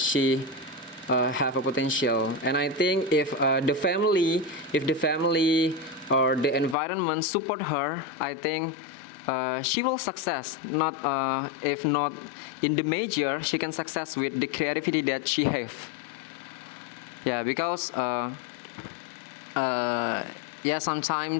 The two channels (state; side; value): drops out; right; at 6.8 s